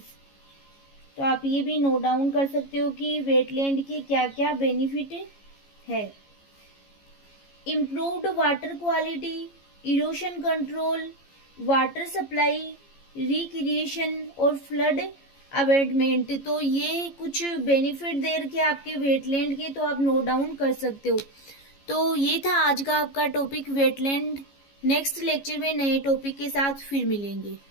तो आप ये भी नोट डाउन कर सकते हो कि वेटलैंड के क्या क्या बेनिफिट है। Improved water quality, erosion control, water supply, recreation और फ्लड अवेटमेंट। तो ये कुछ बेनिफिट दे रखे आपके वेटलैंड के, तो आप नोट डाउन कर सकते हो। तो ये था आज का आपका टॉपिक वेटलैंड। नेक्स्ट लेक्चर में नए टॉपिक के साथ फिर मिलेंगे।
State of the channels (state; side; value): late; right; 15 ms